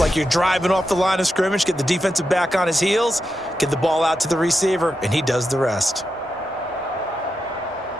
you're driving off the line of scrimmage, get the defensive back on his heels, get the ball out to the receiver, and he does the rest.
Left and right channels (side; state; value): both; normal; correlation 0.87